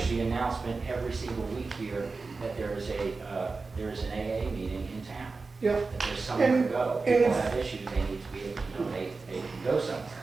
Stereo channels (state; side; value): quieter; left; 4.1 dB